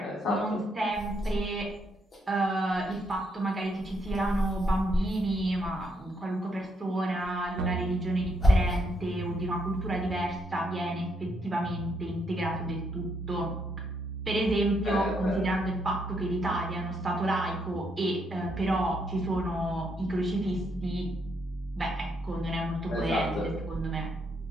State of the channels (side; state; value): both; normal; correlation 0.75